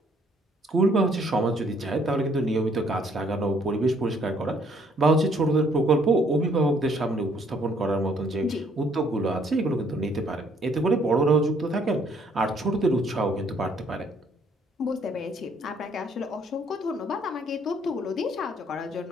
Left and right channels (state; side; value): normal; both; correlation 0.65